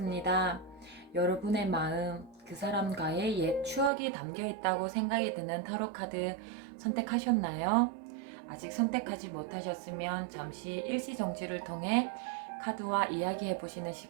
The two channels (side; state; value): left; drops out; at 3.9 s